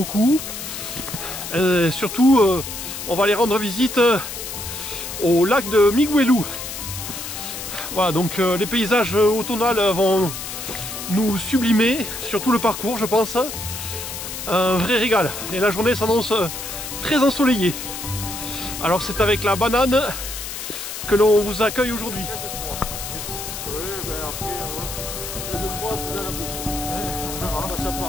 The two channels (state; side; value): noise; left; hiss, 8 dB below the sound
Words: Surtout on va aller rendre visite au lac de Miguelou. Voilà, donc les paysages automnales vont nous sublimer sur tout le parcours, je pense. Un vrai régal. Et la journée s'annonce très ensoleillée. Alors c'est avec la banane que l'on vous accueille aujourd'hui. Oui, ben après, deuxième fois, vous allez la bouche. On verra. Ça